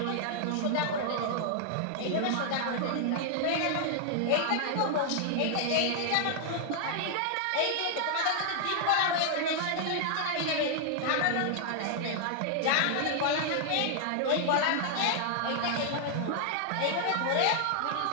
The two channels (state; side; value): different; both; correlation 0.00